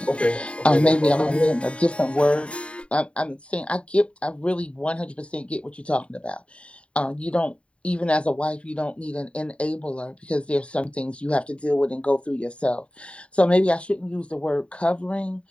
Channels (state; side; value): late; right; 0.060 ms